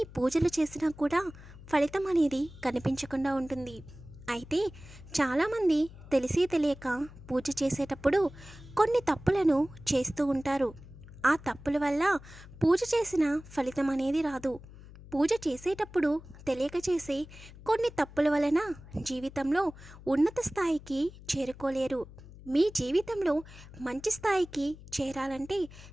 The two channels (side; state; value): left; noise; hum, 18 dB below the sound